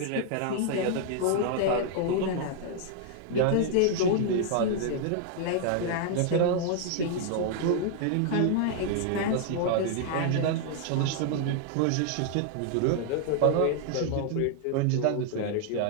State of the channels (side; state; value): both; different; correlation 0.00